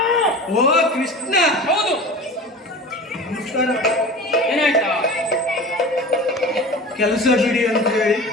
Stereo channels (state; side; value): normal; both; correlation 0.35